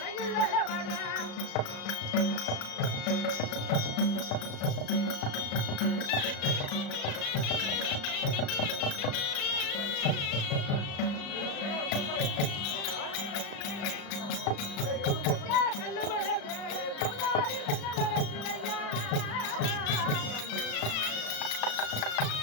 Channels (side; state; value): right; late; 35 ms